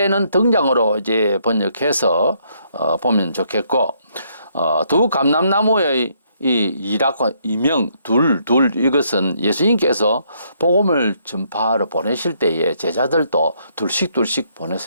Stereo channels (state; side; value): inverted; both; correlation -0.71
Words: 등장으로 이제 번역해서 보면 좋겠고, 두 감람나무의 이 이라고 이명 둘 이것은 예수님께서 복음을 전파하러 보내실 때에 제자들도 둘씩